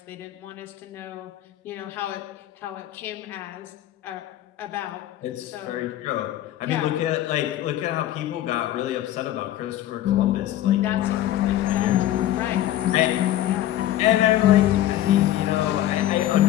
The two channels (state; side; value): quieter; right; 13.2 dB